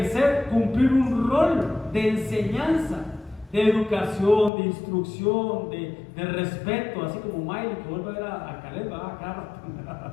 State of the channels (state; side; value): drops out; right; at 4.5 s